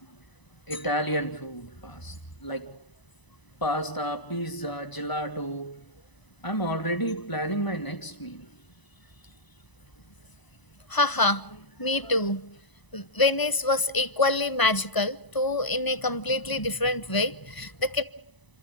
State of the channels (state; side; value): late; right; 1.0 ms